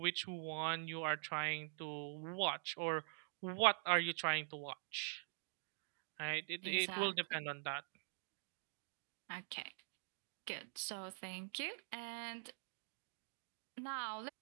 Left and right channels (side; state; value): left; silent; digital silence